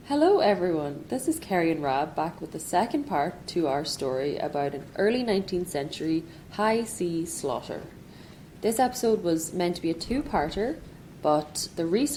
Hello everyone, this is Kerry and Rab back with the second part to our story about an early 19th century high sea slaughter. This episode was meant to be a 2-parter, but the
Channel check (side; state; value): both; identical; correlation 1.00